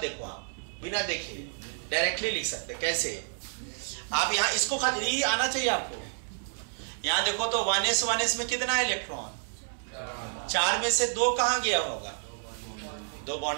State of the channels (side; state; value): left; silent; 58 dB below the other